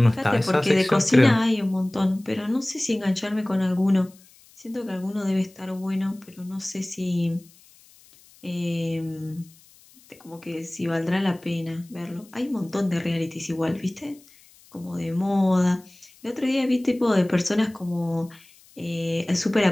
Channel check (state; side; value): noise; left; hiss, 27 dB below the sound